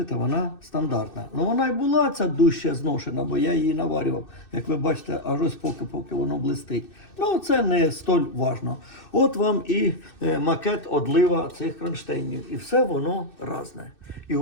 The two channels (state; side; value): late; right; 2.6 ms